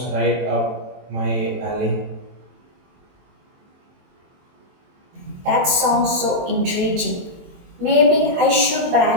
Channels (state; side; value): late; left; 23 ms